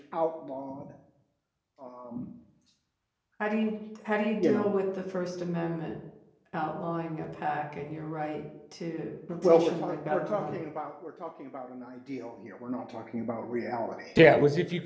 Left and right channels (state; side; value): identical; both; correlation 1.00